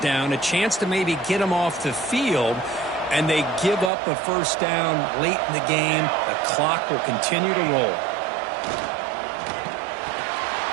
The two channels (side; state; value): left; drops out; at 3.9 s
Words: down, a chance to maybe get them off the field, and they give up a first down late in the game. The clock will continue to roll.